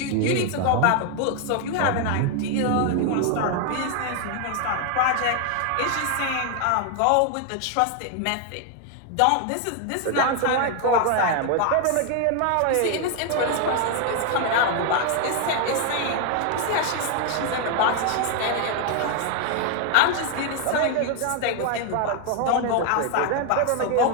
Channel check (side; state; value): both; different; correlation 0.00